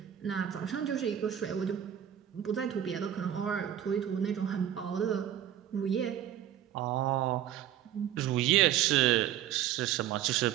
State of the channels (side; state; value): left; quieter; 10.9 dB